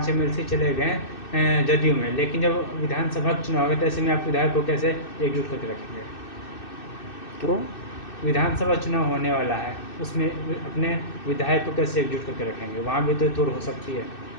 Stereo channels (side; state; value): right; late; 2.6 ms